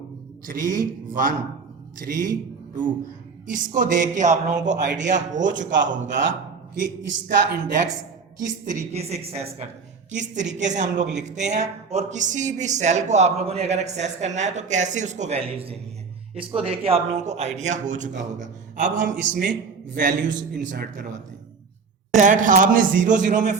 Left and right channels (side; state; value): left; quieter; 5.1 dB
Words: 3 1 3 2। इसको देख के आप लोगों को आइडिया हो चुका होगा कि इसका इंडेक्स किस तरीके से एक्सेस किस तरीके से हम लोग लिखते हैं, और किसी भी सेल को आप लोगों ने अगर एक्सेस करना है तो कैसे उसको वैल्यूज देनी है। इसको देख के आप लोगों को आइडिया हो चुका होगा। अब हम इसमें वैल्यूज इंसर्ट करवाते हैं। आपने 0 0 में